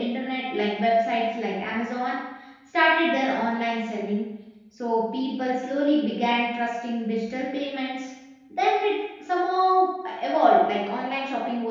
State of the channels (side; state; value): both; identical; correlation 1.00